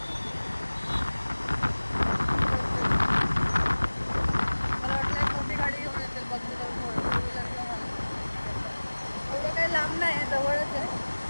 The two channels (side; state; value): both; inverted; correlation -1.00